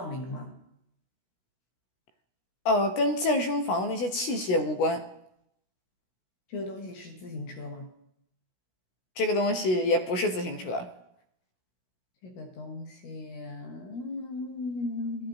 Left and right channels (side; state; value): right; late; 16 ms